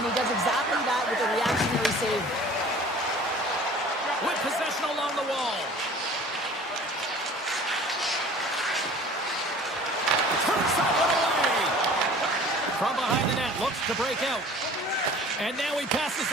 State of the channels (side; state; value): both; normal; correlation 0.46